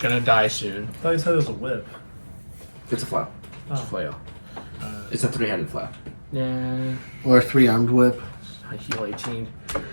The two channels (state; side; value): inverted; both; correlation -1.00